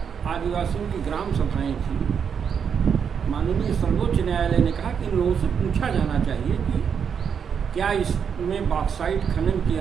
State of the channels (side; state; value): left; quieter; 7.1 dB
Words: आदिवासियों की ग्राम सभाएं थी। माननीय सर्वोच्च न्यायालय ने कहा कि इन लोगों से पूछा जाना चाहिए कि क्या इसमें बॉक्साइट खनन की